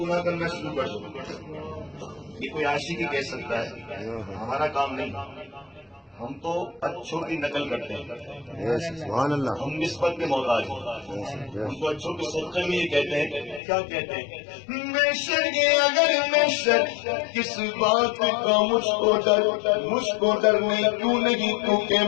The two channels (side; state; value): right; drops out; at 13.6 s